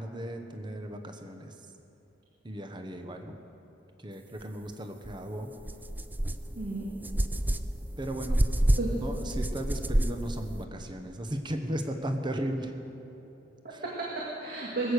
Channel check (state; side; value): normal; both; correlation 0.86